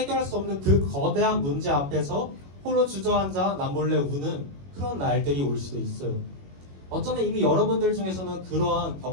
수 없는 그 거대한 문제 앞에서 홀로 주저앉아 남몰래 우는 그런 날들이 올 수도 있어요. 어쩌면 이미 여러분들 중에서는 그러한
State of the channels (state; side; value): late; left; 21 ms